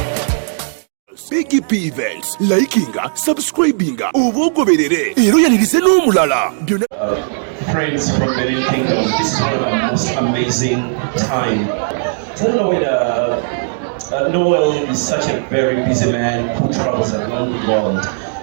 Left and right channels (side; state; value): left; silent; digital silence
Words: BGP Events, likinga, subscribinga, obogoberere, ero yanirize n'omulala. Friends from Mary Kingdom, this is one of the most amazing time. I don't know whether Noel is such a very busy man who travels around the world,